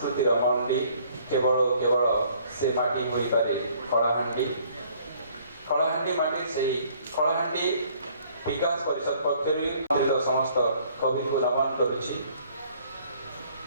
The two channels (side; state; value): both; inverted; correlation -0.60